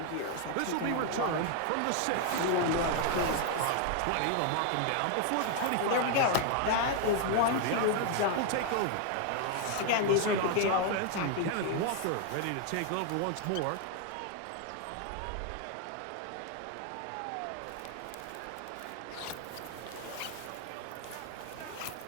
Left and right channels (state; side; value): different; both; correlation 0.01